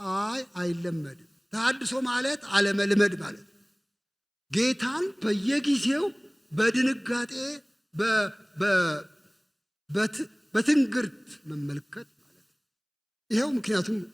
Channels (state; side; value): identical; both; correlation 1.00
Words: አይለመድም። ተሐድሶ ማለት አለመልመድ ማለት ነው። ጌታን በየጊዜው በድንጋጤ በትንግርት መመልከት ማለት ነው። ይኸው ምክንያቱም